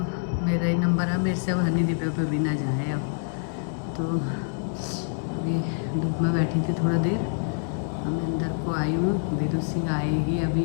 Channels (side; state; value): right; silent; digital silence